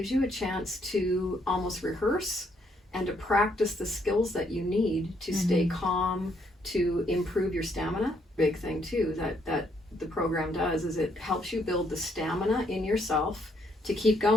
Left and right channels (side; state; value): both; normal; correlation 0.72